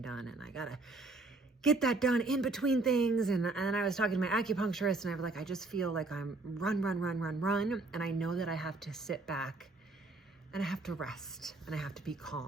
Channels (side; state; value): left; quieter; 3.3 dB